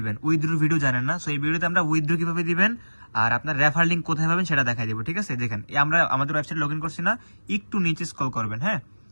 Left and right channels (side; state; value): both; inverted; correlation -1.00